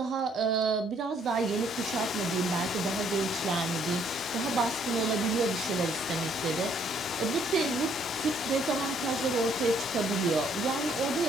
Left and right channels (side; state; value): both; normal; correlation 0.66